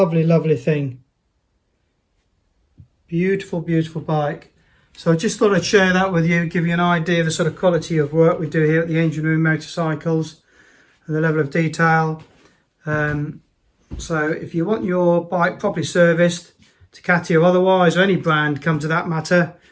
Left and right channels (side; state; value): both; identical; correlation 1.00